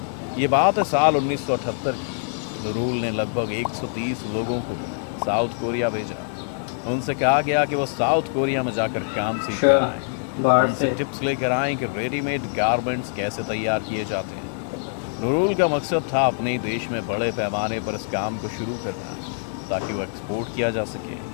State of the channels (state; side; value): silent; right; 63 dB below the other